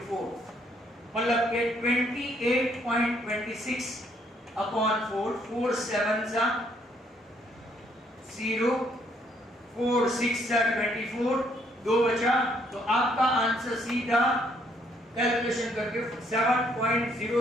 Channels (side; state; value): both; normal; correlation 0.69